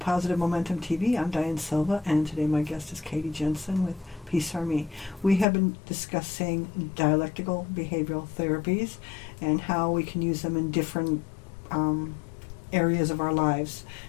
Positive Momentum TV. I'm Diane Silva, and today my guest is Katie Jensen with Peace Army. We have been discussing dialectical behavioral therapies and how we can use them in different areas of our lives,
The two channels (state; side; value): drops out; right; at 5.5 s